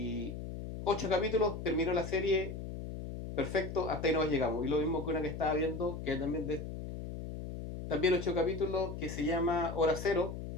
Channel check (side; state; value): left; noise; hum, 7 dB below the sound